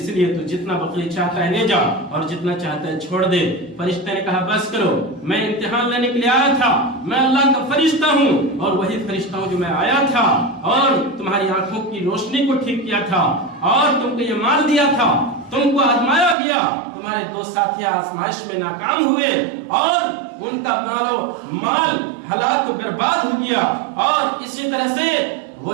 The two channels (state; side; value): drops out; left; at 16.4 s